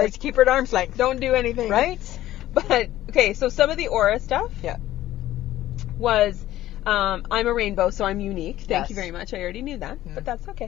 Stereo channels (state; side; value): quieter; right; 14.4 dB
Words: Let's keep her at arm's length. Don't do anything. Right? But okay, so some of the aura stuff. Yeah. Was, I'm a rainbow, so I'm unique. Thank you Yes. very much. I already knew that, but that's